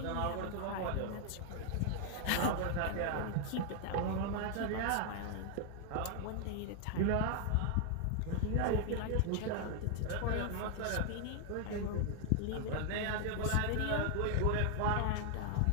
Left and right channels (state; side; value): different; both; correlation 0.00